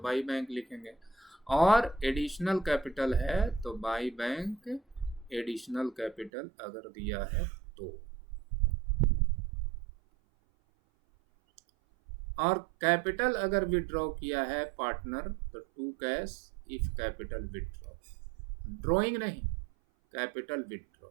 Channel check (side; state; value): left; drops out; at 6.3 s